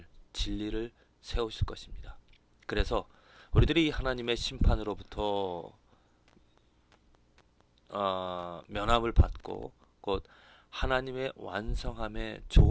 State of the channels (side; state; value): both; identical; correlation 1.00